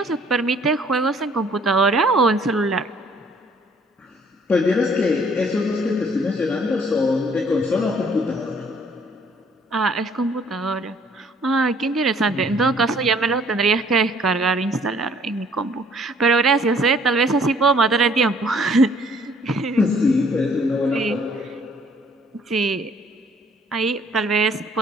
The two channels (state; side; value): normal; both; correlation 0.60